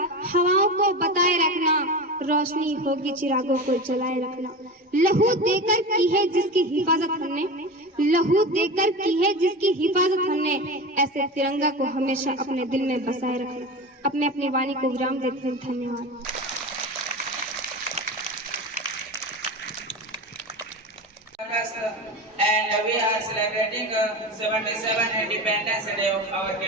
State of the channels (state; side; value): normal; both; correlation 0.27